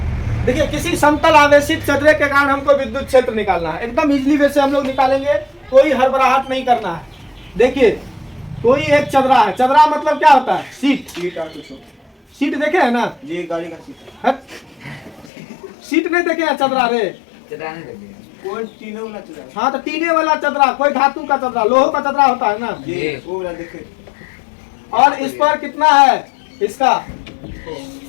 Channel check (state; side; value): drops out; right; at 15.3 s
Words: देखिए, किसी समतल आवेशित चदरे के कारण हमको विद्युत क्षेत्र निकालना है। एकदम इजीली वे से हम लोग निकालेंगे, कोई हड़बड़ाहट नहीं करना है। देखिए, कोई एक चदरा है। चदरा मतलब क्या होता है? सीट। सीट देखे है ना? ये गाड़ी का सीट है। सीट नहीं देखे है? चदरा रे, चदरा नहीं देखे। कोई टीने वाला चदरा। हाँ, तो टीने वाला चदरा, कोई धातु का चदरा, लोहे का चदरा होता है ना, ये वो वाला देखे। और इस पर कितना है? इसका